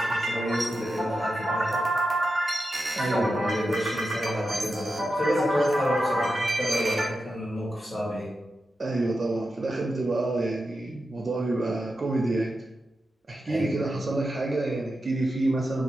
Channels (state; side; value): normal; both; correlation 0.89